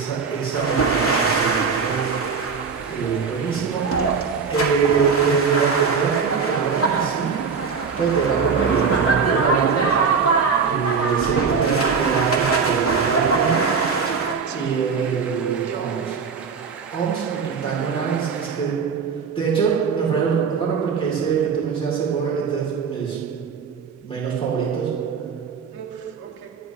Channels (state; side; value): quieter; left; 5.6 dB